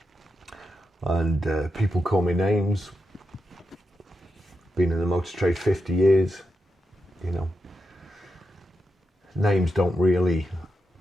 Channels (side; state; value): both; normal; correlation 0.87